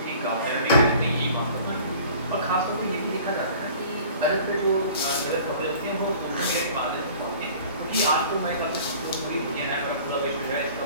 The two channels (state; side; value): inverted; both; correlation -0.47